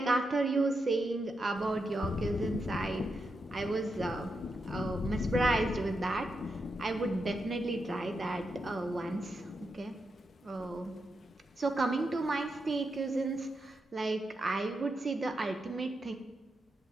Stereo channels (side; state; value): both; normal; correlation 0.85